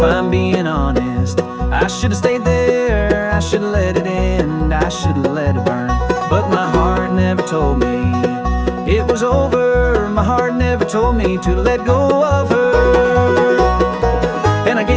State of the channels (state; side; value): identical; both; correlation 1.00